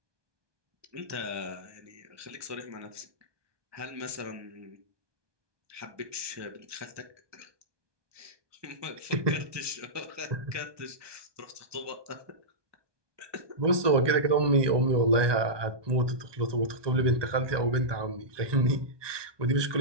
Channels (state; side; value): late; left; 1.2 ms